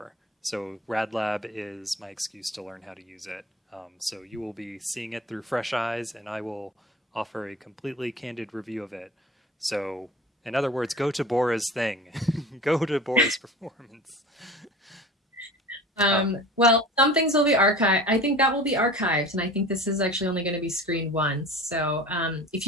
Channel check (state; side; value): normal; both; correlation 0.39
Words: So RadLab is my excuse to learn how to use it. So you will be seeing it through fresh eyes, and I will offer a completely candid review of it. So, in other words, go to Bora's thing. Go to Bora's performance. Well, some things will be archived. I think that will be archived, and I think this is actually only going to be screened once. So if